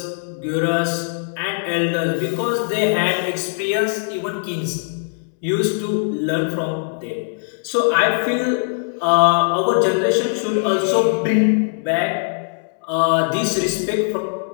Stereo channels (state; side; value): silent; right; digital silence